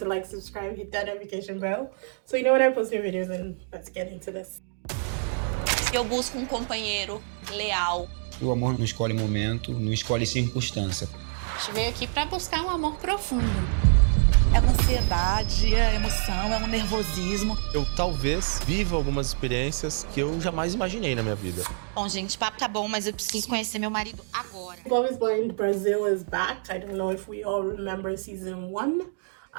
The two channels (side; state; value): left; silent; 60 dB below the other